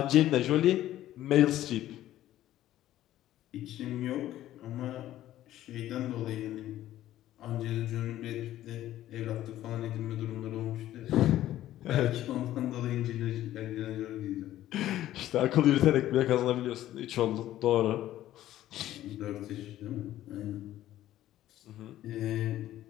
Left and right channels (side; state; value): right; quieter; 13.5 dB